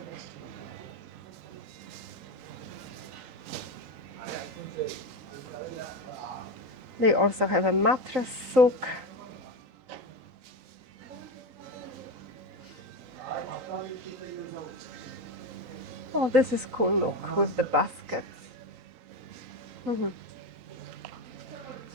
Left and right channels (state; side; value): late; left; 3.9 ms